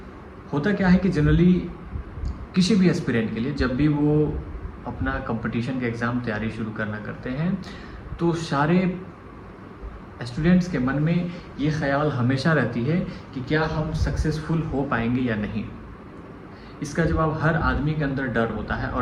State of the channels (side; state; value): both; identical; correlation 1.00